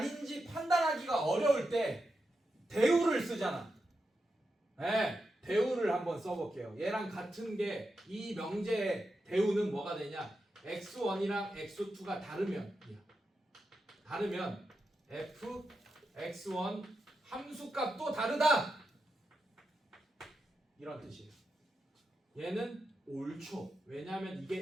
판단하기가 어려울 때 대우를 쓰잖아. 네, 대우를 한번 써볼게요. 얘랑 같은 게 이 명제의 대우는 뭐가 되냐? x1이랑 x2가 다르면 다르면 fx1 함수값도 다르다 이런 뜻이에요. 얘는 옳죠. 왜냐하면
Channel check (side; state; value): both; normal; correlation 0.88